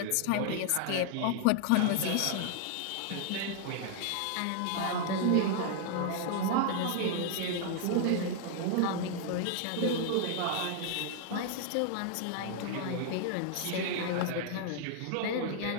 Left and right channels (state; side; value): different; both; correlation 0.00